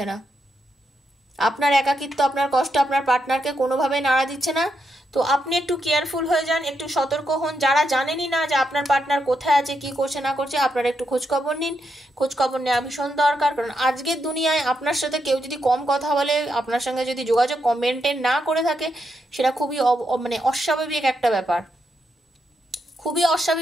না। আপনার একাকিত্ব, আপনার কষ্ট আপনার পার্টনারকে কোনোভাবেই নাড়া দিচ্ছে না। তো আপনি একটু কেয়ারফুল হয়ে যান, একটু সতর্ক হন। যারা জানেনই না যে আপনার পার্টনার কোথায় আছে, কি করছে না করছে, আপনারা একটু খোঁজখবর নিন। খোঁজখবর নেওয়া ভীষণ দরকার, কারণ আজকের দুনিয়ায় আপনার সাথে কেউ যদি কম কথা বলে, আপনার সঙ্গে যদি যোগাযোগ মেনটেন না করে থাকে, সেটা খুবই মানে অস্বাভাবিক একটা ব্যাপার, খুবই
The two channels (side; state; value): both; normal; correlation 0.82